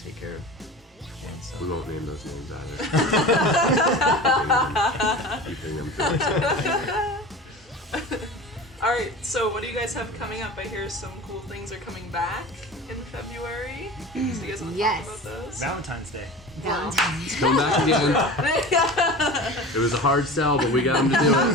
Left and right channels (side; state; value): both; normal; correlation 0.34